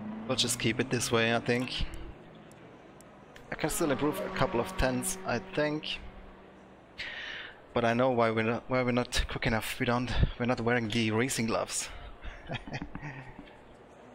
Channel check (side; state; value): both; identical; correlation 1.00